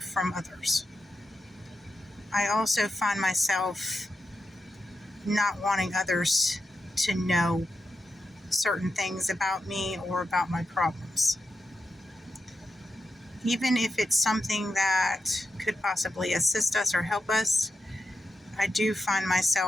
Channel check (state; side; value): normal; both; correlation 0.88